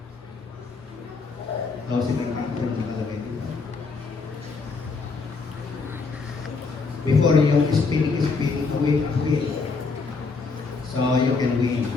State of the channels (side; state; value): right; quieter; 4.4 dB